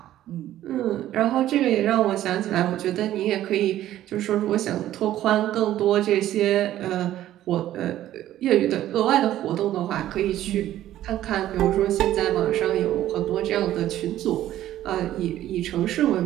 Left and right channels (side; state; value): left; quieter; 13.1 dB